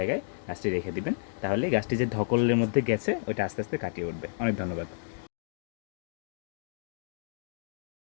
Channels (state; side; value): silent; right; digital silence